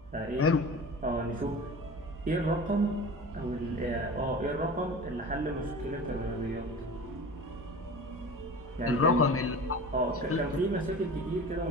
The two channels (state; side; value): normal; both; correlation 0.36